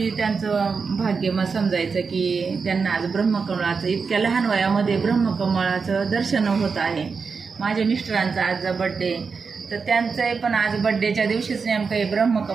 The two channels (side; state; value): left; quieter; 5.2 dB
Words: त्यांचं भाग्य मग समजायचं की त्यांना आज ब्रह्मकमळाचं इतक्या लहान वयामध्ये ब्रह्मकमळाचं दर्शन होत आहे। माझ्या मिस्टरांचा आज बड्डे, तर त्यांचं पण आज बड्डेच्या दिवशीच नेमकं हे